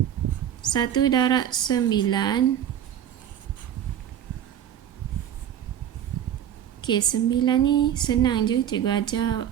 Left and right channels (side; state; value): left; quieter; 10.1 dB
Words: 1 darab 9. Okey, 9 ni senang je. Cikgu ajar